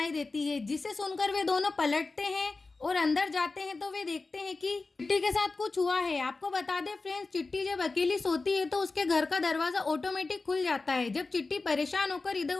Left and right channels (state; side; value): quieter; right; 3.7 dB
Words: देती है जिसे सुनकर वे दोनों पलटते हैं और अंदर जाते हैं तो वे देखते हैं कि चिट्टी के साथ कुछ हुआ है। आपको बता दें फ्रेंड्स, चिट्टी जब अकेली सोती है तो उसके घर का दरवाजा ऑटोमेटिक खुल जाता है। जब चिट्टी परेशान होकर इधर